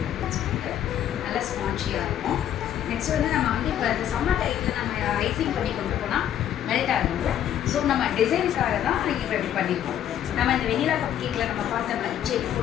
சொல்லிட்டு நல்லா ஸ்பான்ச்சியாக இருக்கும். நெக்ஸ்ட் வந்து நம்ம வந்து இப்போ இந்த சம்மர் டைத்தில் நம்ம ஐசிங் பண்ணி கொண்டு போனால் மெல்ட் ஆகுது. ஸோ நம்ம டிசைனுக்காக தான் இப்போ இப்படி பண்ணியிருக்கோம். நம்ம இந்த வெனிலா கப் கேக்கில் நம்ம பார்த்த மாதிரி செடி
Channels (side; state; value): right; quieter; 10.5 dB